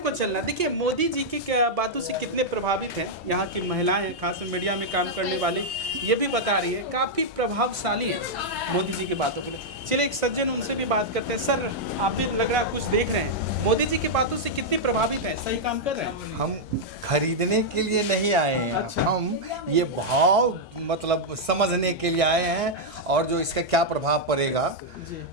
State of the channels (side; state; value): both; normal; correlation -0.04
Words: चलना। देखिए मोदी जी की बातों से कितने प्रभावित हैं यहाँ की महिलाएं हैं, खास मीडिया में काम करने वाले, ये भी बता रही है काफ़ी प्रभावशाली है मोदी जी की बातों को। चलिए एक सज्जन, उनसे भी बात करते हैं। सर, आप भी लग रहा है कुछ देख रहे हैं, मोदी जी की बातों से कितने प्रभावित हैं, सही काम कर रहे हैं? हम खरीदने के लिए नहीं आए हैं। अच्छा। हम ये भाव मतलब समझने के लिए आए हैं और जो इसका क्या प्रभाव पड़ेगा।